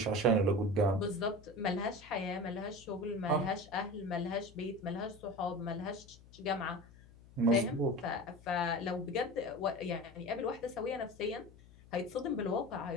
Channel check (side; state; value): left; noise; hum, 22 dB below the sound